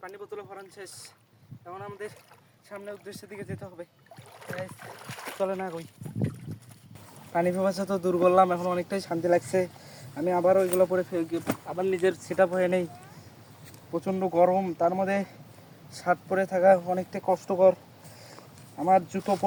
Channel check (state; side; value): identical; both; correlation 1.00